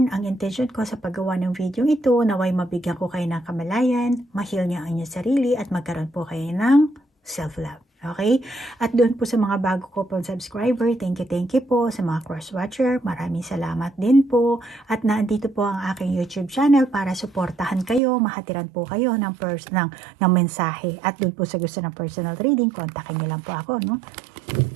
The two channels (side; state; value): left; drops out; at 18.0 s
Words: ang intention ko sa paggawa ng video ito, naway mabigyan ko kayo ng kamalayan, ma-heal niyo ang inyong sarili at magkaroon po kayo ng self-love. Okay? At doon po sa mga bago ko pong subscriber, thank you po. Sa mga cross-watcher, maraming salamat din po. At nandito po ang aking YouTube channel para suportahan kayo, mahatiran po kayo ng mensahe. At doon po sa gusto ng personal reading, kontakin niyo lang po ako, no?